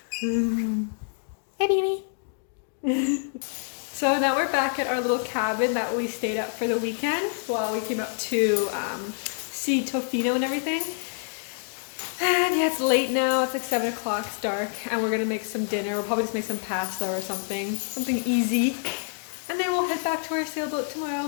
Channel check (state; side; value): silent; right; 60 dB below the other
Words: Hey, baby. So now we're back at our little cabin that we stayed at for the weekend while we came up to see Tofino and everything. And yeah, it's late now. It's like 7 o'clock. It's dark. And we're going to make some dinner. We'll probably just make some pasta or something. Something easy. And then we'll head back to our sailboat